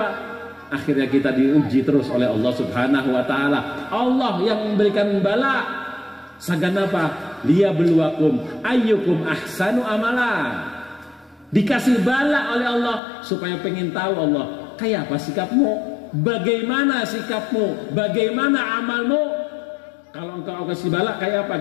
Akhirnya kita diuji terus oleh Allah Subhanahu wa ta'ala. Allah yang memberikan bala. Sagan apa? Liyabluwakum ayyukum ahsanu amala. Dikasih bala oleh Allah supaya pengen tahu Allah, kayak apa sikapmu? Bagaimana sikapmu? Bagaimana amalmu? Kalau engkau kasih bala, kayak apa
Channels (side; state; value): right; drops out; at 13.0 s